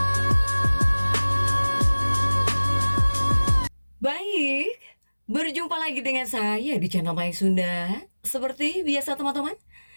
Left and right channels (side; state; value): both; inverted; correlation -1.00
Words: Baik, berjumpa lagi dengan saya di channel Mai Sunda. Seperti biasa teman-teman,